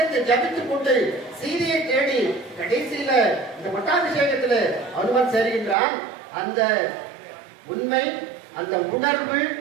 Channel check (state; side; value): drops out; left; at 5.8 s